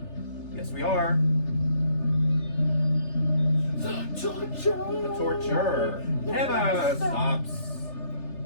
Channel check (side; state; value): right; late; 3.4 ms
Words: Yes, we are. The torture! The torture never stops.